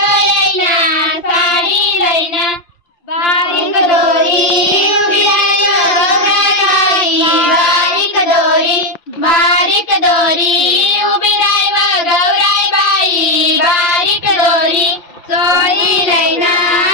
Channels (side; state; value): right; late; 5.8 ms